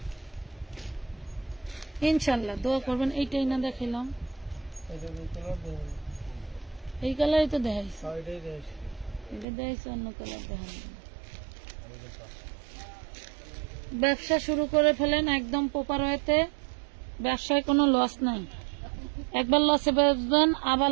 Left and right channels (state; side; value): drops out; left; at 9.5 s